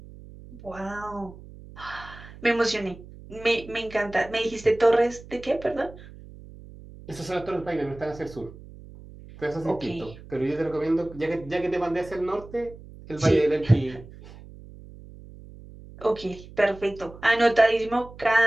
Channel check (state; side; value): noise; right; hum, 18 dB below the sound